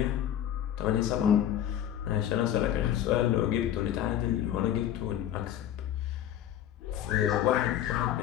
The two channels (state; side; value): quieter; right; 11.0 dB